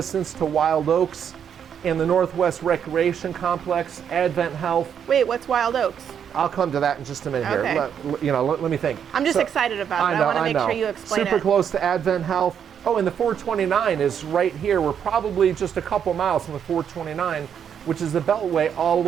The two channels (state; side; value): quieter; left; 8.2 dB